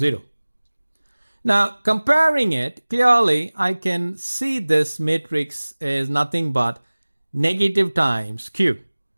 Now comparing it, clearly I can see this matrix is nothing but negative times Q.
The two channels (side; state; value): both; inverted; correlation -1.00